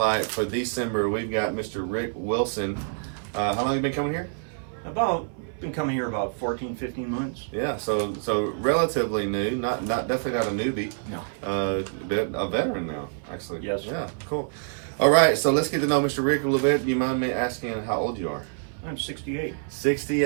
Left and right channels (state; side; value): silent; left; 61 dB below the other